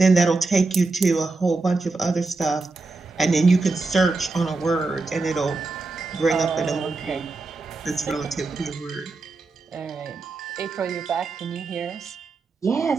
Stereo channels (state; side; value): quieter; left; 3.6 dB